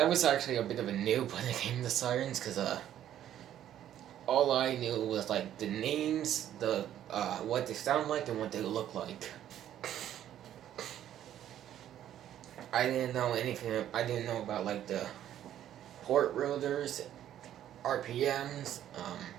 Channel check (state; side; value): quieter; left; 11.3 dB